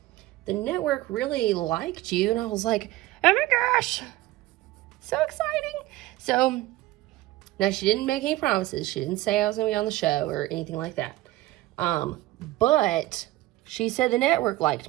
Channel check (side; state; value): left; quieter; 17.4 dB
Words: the Network really liked you. And I was like, oh my gosh, so exciting. So now she didn't make any promises. She didn't say I was going to be on the show or anything like that. But she said the Network liked